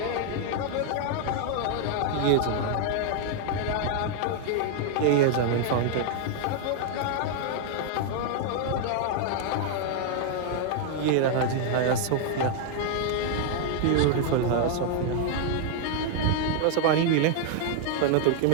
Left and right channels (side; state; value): both; different; correlation 0.00